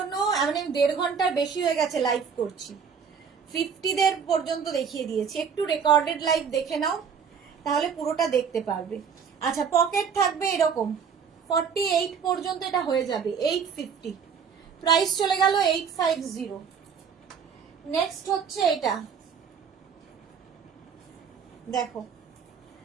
মানে 1.5 ঘন্টার বেশি হয়ে গেছে লাইভ করছি, 50 দের পর্যন্ত দেখিয়ে দিয়েছি। একটু রেকর্ডেড লাইভ দেখে নাও তাহলে পুরোটা দেখতে পারবে। আচ্ছা, পকেট থাকবে এরকম 48 পর্যন্ত, এটা হয়ে যাবে 850। প্রাইস চলে গেল 850। নেক্সট হচ্ছে এটা দেখো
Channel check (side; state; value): left; quieter; 6.6 dB